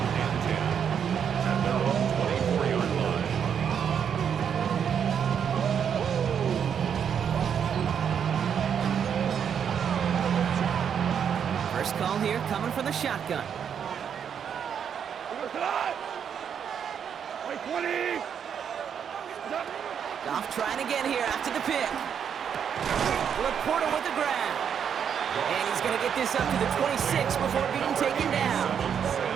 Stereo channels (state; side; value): quieter; left; 7.9 dB